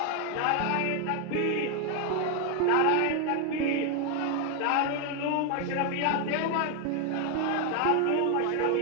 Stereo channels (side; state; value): both; different; correlation 0.01